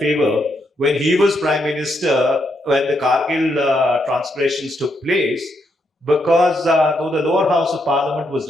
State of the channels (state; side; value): normal; both; correlation 0.78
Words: when he was Prime Minister, when the Kargil transgressions took place, because though the lower house of Parliament was